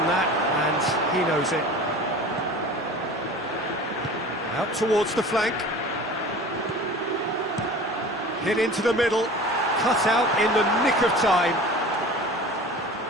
that, and he knows it. Out towards the flank. Hit into the middle. Cut out in the nick of time.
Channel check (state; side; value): normal; both; correlation 0.39